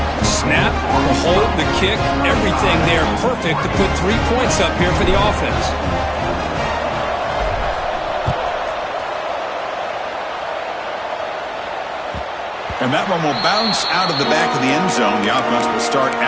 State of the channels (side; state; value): both; identical; correlation 1.00